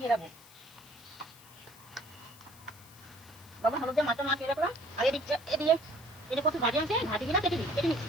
রাখবো। লবণ হলুদ দিয়ে মাছটা মাখিয়ে রাখলাম। আর এদিকে এই যে কত ভাজি আছে, ভাজিগুলো কেটে নিচ্ছি।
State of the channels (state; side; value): noise; left; hiss, 22 dB below the sound